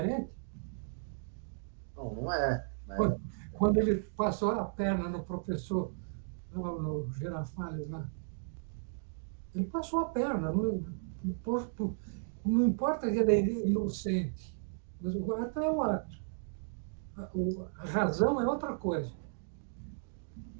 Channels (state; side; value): silent; left; digital silence